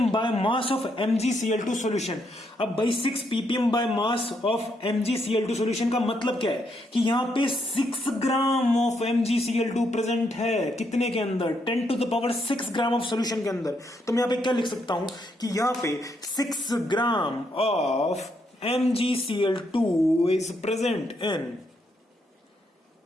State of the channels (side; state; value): both; normal; correlation 0.76